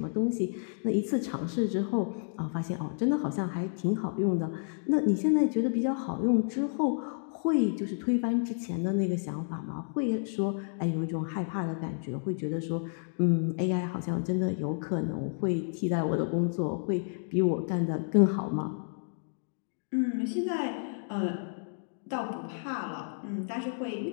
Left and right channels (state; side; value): silent; right; digital silence